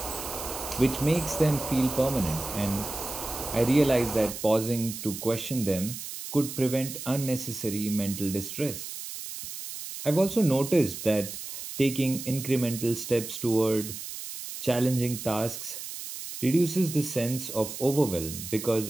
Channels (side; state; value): right; noise; hiss, 9 dB below the sound